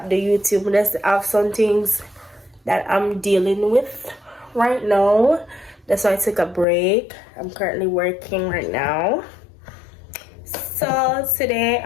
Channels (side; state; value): right; drops out; at 6.7 s